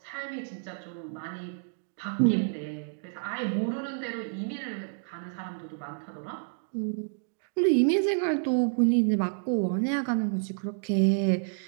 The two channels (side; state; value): left; silent; digital silence